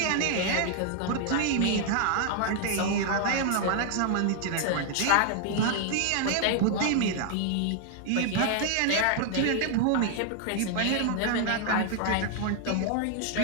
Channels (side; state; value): both; different; correlation 0.00